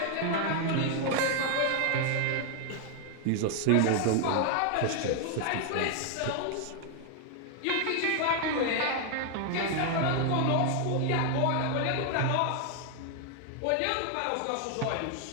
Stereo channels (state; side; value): different; both; correlation 0.00